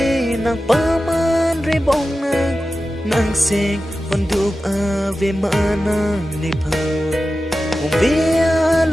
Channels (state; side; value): normal; both; correlation 0.94